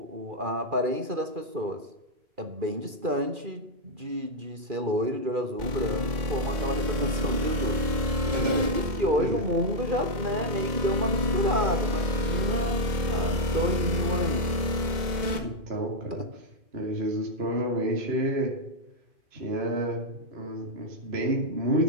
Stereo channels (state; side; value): late; left; 2.1 ms